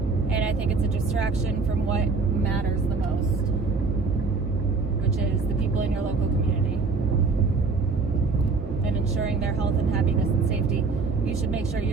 I think it's a distraction from what matters the most, which is the people in your local community. And ensuring their health and happiness and safety. You should make sure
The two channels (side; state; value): left; quieter; 4.2 dB